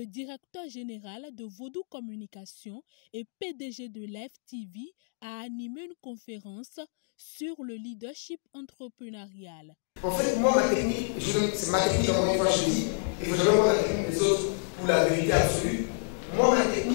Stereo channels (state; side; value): silent; right; digital silence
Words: directeur général de Vodou Communication et PDG de Live TV a animé une conférence sur le leadership entrepreneurial. En fait, moi, ma technique, c'est ma technique, encore une fois, je dis, et vous allez voir la technique des autres pour la vérité absolue. Moi, ma